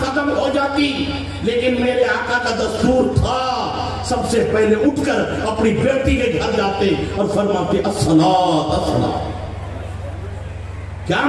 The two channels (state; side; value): identical; both; correlation 1.00